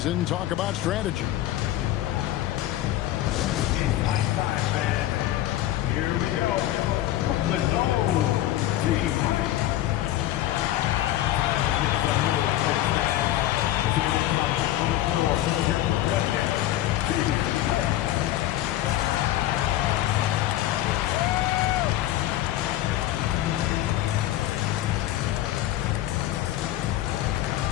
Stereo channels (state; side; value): quieter; right; 13.9 dB